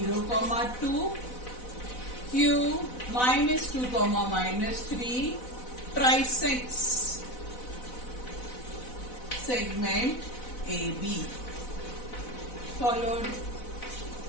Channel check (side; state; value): right; late; 4.0 ms